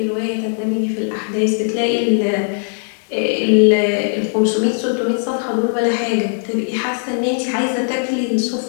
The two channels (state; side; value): silent; right; 61 dB below the other